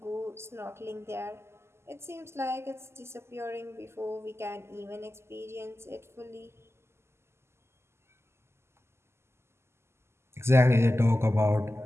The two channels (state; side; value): late; left; 0.12 ms